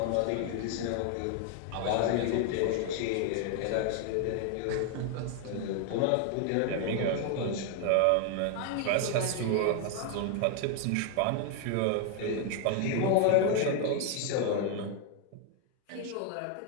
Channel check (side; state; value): both; different; correlation 0.00